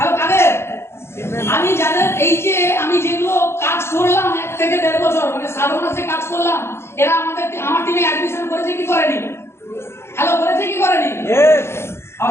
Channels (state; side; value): late; right; 0.12 ms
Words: কাদের? আমি যাদের এই যে আমি যেগুলো কাজ করলাম 1 থেকে 1.5 বছর মানে 7 মাসে কাজ করলাম, এরা আমার টিমে অ্যাডমিশন করেছে কি করেনি? হ্যালো, করেছে কি করেনি?